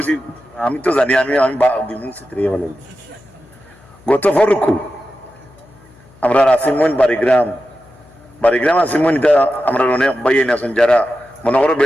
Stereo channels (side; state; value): left; noise; hum, 27 dB below the sound